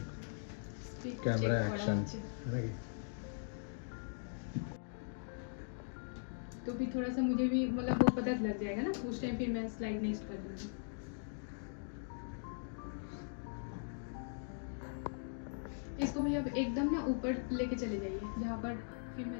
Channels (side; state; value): right; silent; digital silence